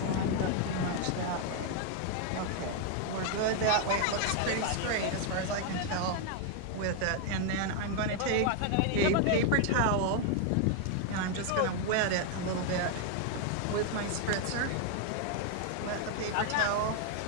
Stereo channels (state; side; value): different; both; correlation 0.00